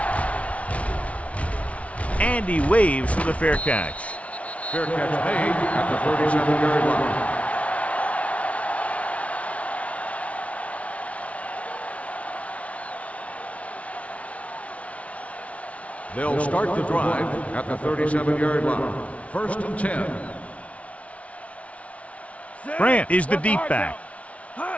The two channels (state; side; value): late; right; 0.065 ms